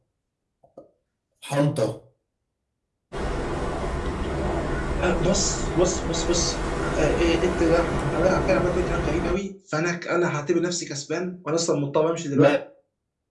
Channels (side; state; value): both; identical; correlation 1.00